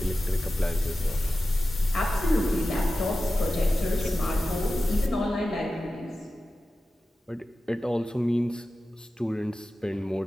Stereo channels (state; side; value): normal; both; correlation 0.94